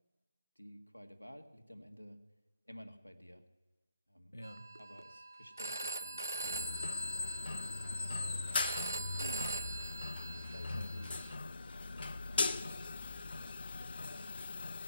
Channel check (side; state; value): both; inverted; correlation -0.72